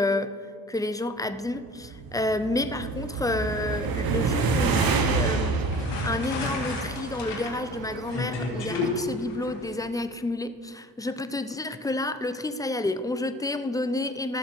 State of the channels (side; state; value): both; normal; correlation 0.44